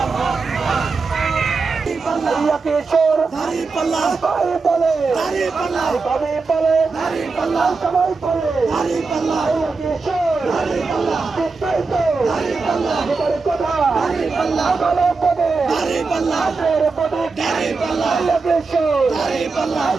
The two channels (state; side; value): quieter; left; 4.3 dB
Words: কিশোর দাড়ি পাল্লা ভাই বলে দাড়ি পাল্লা ভাবি বলে দাড়ি পাল্লা সবাই বলে দাড়ি পাল্লা কিশোর দাড়ি পাল্লা চিন্তাই তো দাড়ি পাল্লা এবারে কথা দাড়ি পাল্লা ভালো পদে দাড়ি পাল্লা পদে দাড়ি পাল্লা কিশোর দাড়ি পাল্লা